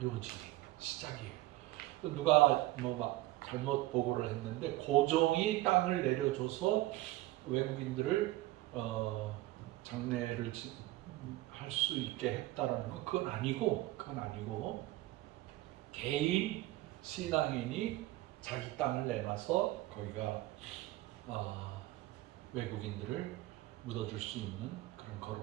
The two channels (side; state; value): left; quieter; 17.5 dB